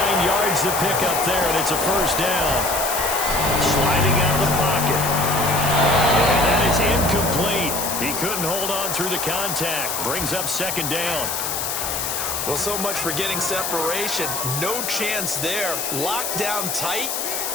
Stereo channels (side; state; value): left; noise; hiss, 2 dB below the sound